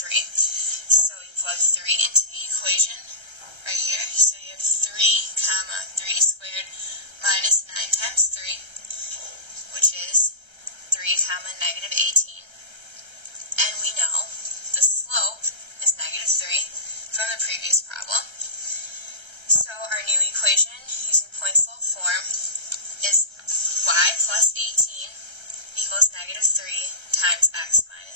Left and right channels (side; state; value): left; late; 1.3 ms